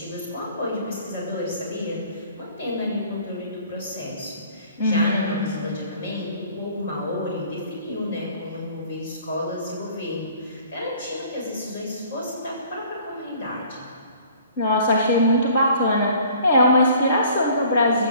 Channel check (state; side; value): inverted; both; correlation -0.53